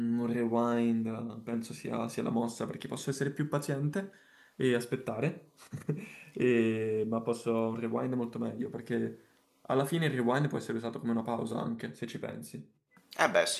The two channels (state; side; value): identical; both; correlation 1.00